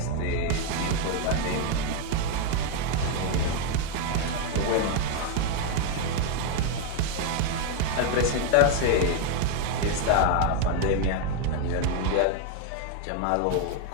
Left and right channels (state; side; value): different; both; correlation 0.01